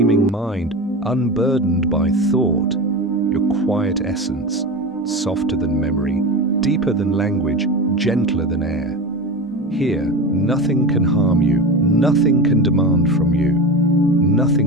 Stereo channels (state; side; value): normal; both; correlation 0.25